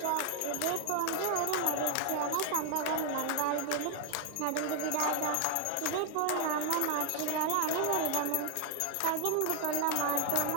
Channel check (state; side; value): different; both; correlation 0.01